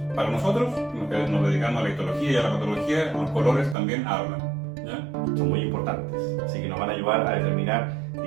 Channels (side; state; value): left; drops out; at 3.8 s